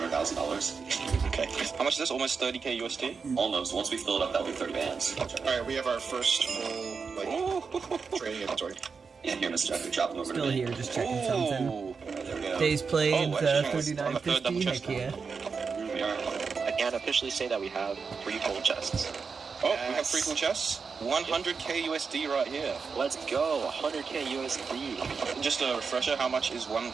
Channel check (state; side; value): quieter; left; 5.3 dB